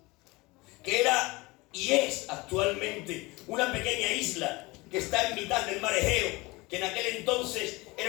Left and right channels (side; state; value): right; quieter; 23.2 dB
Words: que era y es actualmente una pequeña isla que está en mitad del mar Egeo, que en aquel entonces